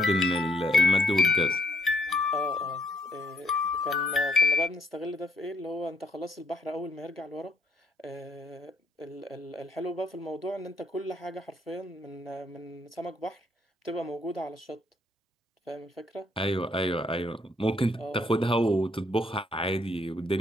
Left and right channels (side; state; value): both; normal; correlation 0.70